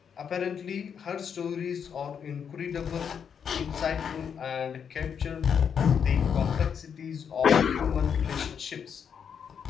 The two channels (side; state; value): right; quieter; 7.4 dB